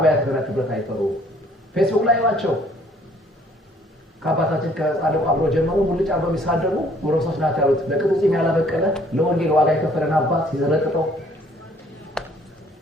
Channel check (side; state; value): both; normal; correlation 0.60